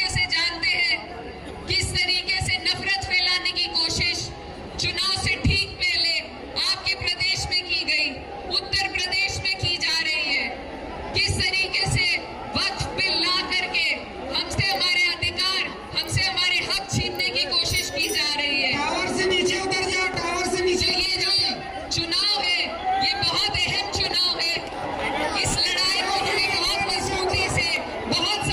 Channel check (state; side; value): identical; both; correlation 1.00